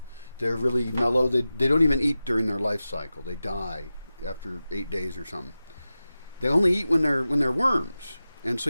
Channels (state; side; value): inverted; both; correlation -0.94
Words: They're really mellow. They don't even eat during their life cycle. They die after 8 days or something. They only eat when they're worms, and so